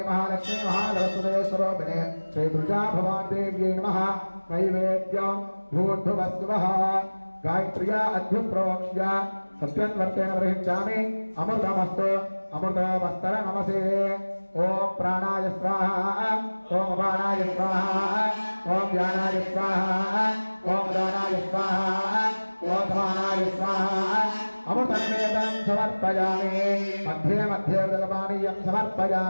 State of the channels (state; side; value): inverted; both; correlation -1.00